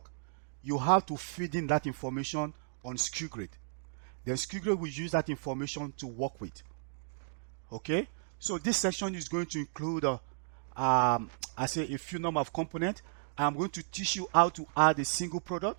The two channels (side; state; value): left; silent; digital silence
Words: you have to feed in that information on Skugrid. Then Skugrid will use that information to work with. Okay, so this section is going to include I say a few number of components. I'm going to teach you how to add a single